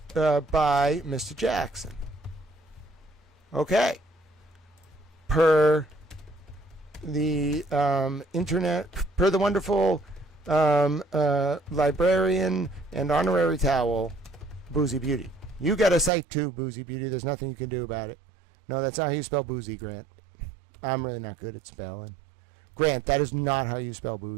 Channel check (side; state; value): left; drops out; at 16.1 s